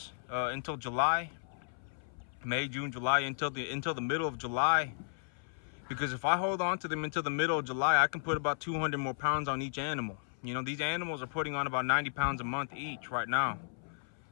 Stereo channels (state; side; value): silent; right; 55 dB below the other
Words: until July, May, June, July, until the middle of July. Because if I hold on to them until the middle of July, I can put about 200 more pounds on each animal. You know, these animals are putting on about 90 pounds a month each right now.